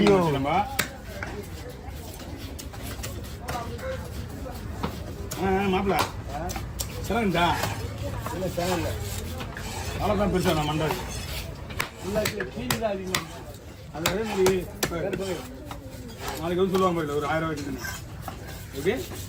நம்ம மாப்பிள்ள சிறந்தா இல்லை சேனல்ல அவ்வளோதான் பெருசா நான் மண்டாது இல்லை கீழே தான் அதிகமாக. அது அதே மாதிரி நாளைக்கு வந்து சொல்லுவாங்க பாருங்க ஒரு 1000 ரூபாய்க்கு. ஓகே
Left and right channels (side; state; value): both; identical; correlation 1.00